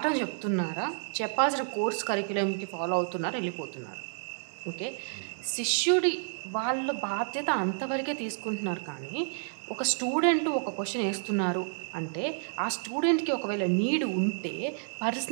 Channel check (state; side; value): silent; left; digital silence